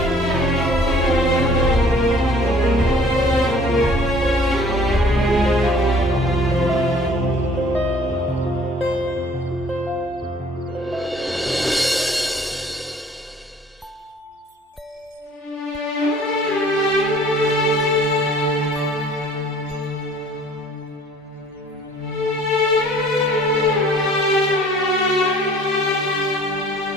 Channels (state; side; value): normal; both; correlation 0.53